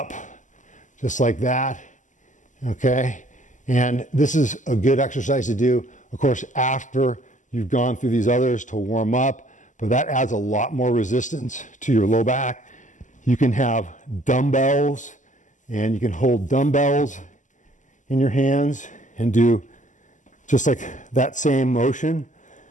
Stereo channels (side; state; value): right; late; 0.37 ms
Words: just like that, okay? And this is a good exercise to do, of course, after you've gone through these others to warm up, but that adds a lot more resistance to your low back. You can have dumbbells, and you can hold dumbbells in your hands and do just like that same motion,